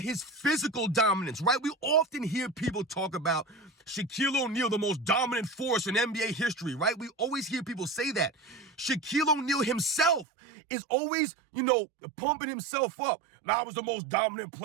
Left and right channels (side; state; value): left; drops out; at 10.2 s